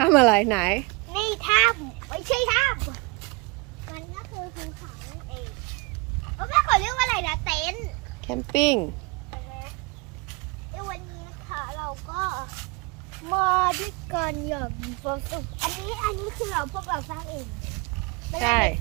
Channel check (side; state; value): left; quieter; 27.4 dB